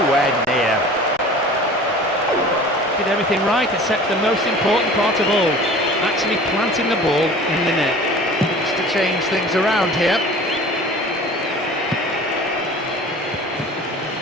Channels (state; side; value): normal; both; correlation 0.43